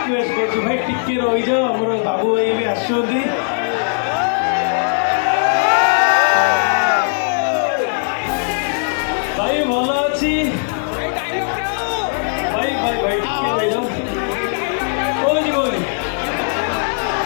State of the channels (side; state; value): right; silent; digital silence